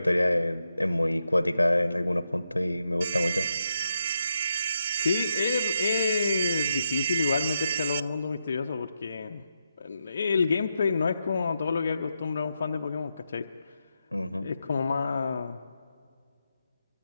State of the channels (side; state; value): both; inverted; correlation -0.84